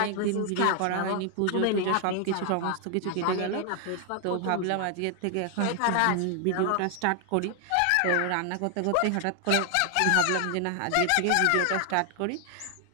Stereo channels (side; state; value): both; different; correlation 0.00